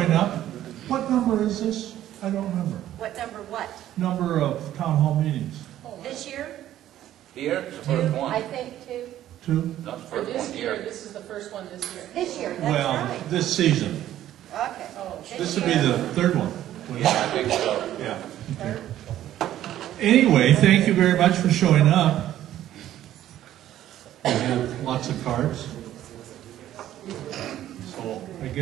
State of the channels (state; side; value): quieter; left; 12.6 dB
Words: up. What number is this? I don't remember. What number what? Number of town hall meetings. This year? Here, it's the first one. I think two. Two? Not the For first this one year, here. this is the first one this year. This year, that's Well, right. this season. Okay. Oh, This would be the third one. Yeah, I think so. Yeah. Okay. Anyway, thank you very much for showing up. We have lots of cards. So I